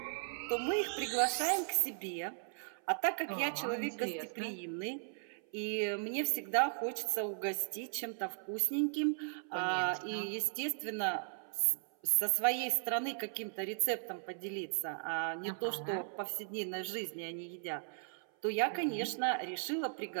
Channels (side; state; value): left; silent; 53 dB below the other